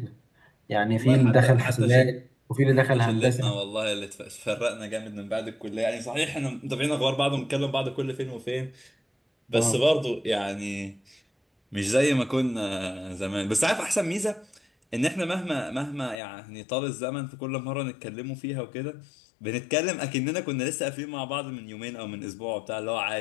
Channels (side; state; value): right; drops out; at 16.2 s